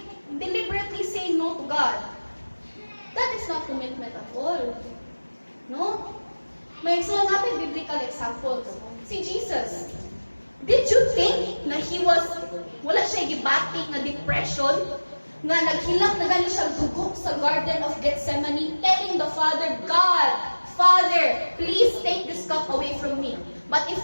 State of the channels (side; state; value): both; inverted; correlation -1.00